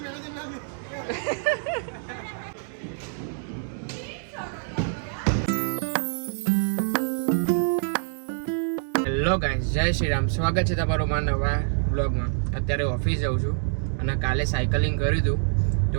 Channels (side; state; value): left; silent; digital silence